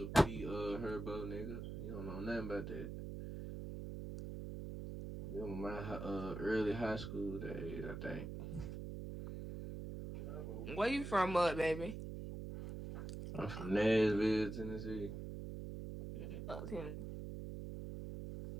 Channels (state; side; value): noise; right; hum, 7 dB below the sound